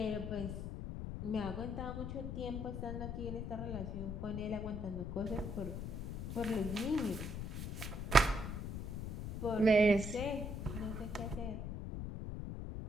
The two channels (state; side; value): noise; left; rumble, 4 dB below the sound